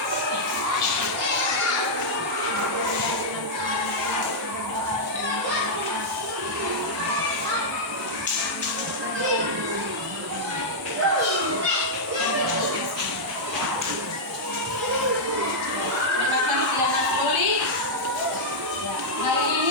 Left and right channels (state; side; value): normal; both; correlation -0.06